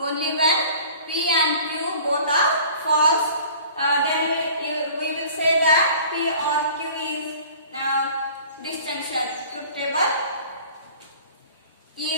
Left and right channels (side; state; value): both; inverted; correlation -0.46